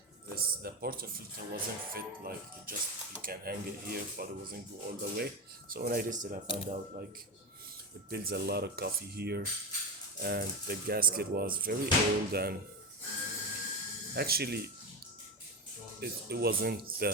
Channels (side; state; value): both; normal; correlation 0.18